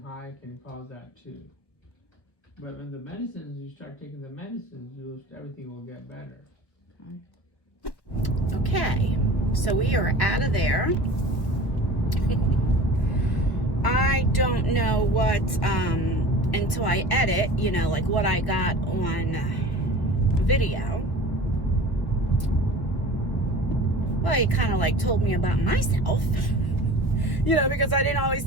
high can cause that too. But when the medicines, you start taking the medicines, everything will get better. Okay, so we are out of there. I don't know what, until I edit, you know, like what I got on video. Well, he kind of like told me about myself, you know, because I didn't always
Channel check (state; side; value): late; right; 1.3 ms